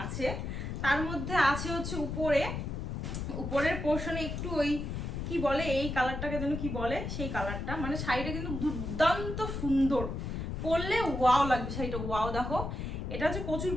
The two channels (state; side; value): noise; left; rumble, 4 dB below the sound